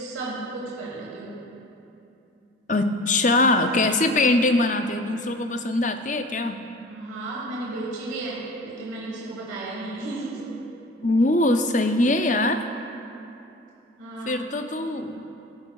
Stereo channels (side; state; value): both; normal; correlation 0.40